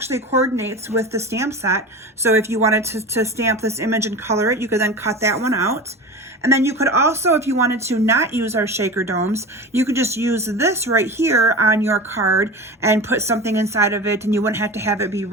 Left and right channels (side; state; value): both; normal; correlation 0.31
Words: coordinates with the stamp set. So if you wanted to stamp this image and color it, you could then cut that one out. And then you could also, if you wanted to not use our shaker domes, you could just use this right here on your card and put something inside of it, and you wouldn't have to have it be